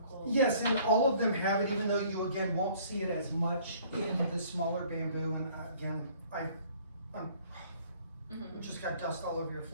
yes, and all of them have it, even though you again won't see it as much in the smaller bamboo. And again, I just got dust all over your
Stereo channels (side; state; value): both; inverted; correlation -0.56